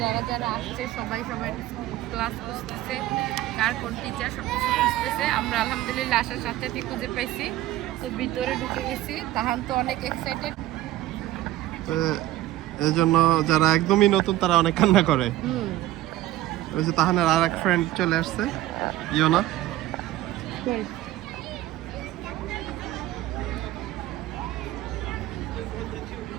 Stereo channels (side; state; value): left; quieter; 15.0 dB